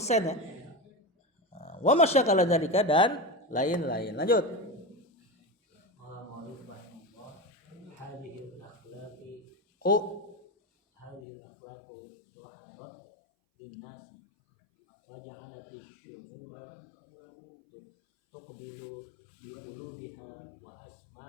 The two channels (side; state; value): right; drops out; at 11.2 s